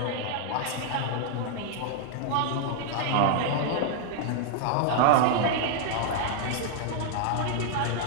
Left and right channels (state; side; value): different; both; correlation -0.01